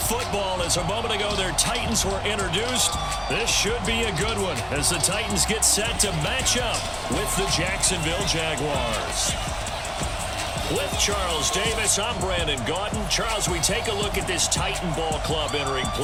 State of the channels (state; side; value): identical; both; correlation 1.00